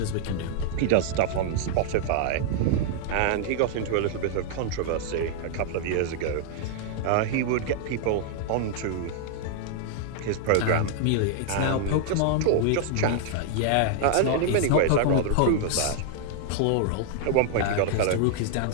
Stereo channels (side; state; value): both; different; correlation -0.01